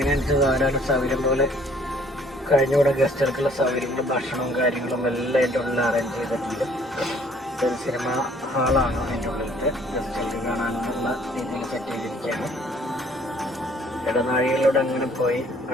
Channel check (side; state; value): both; normal; correlation 0.59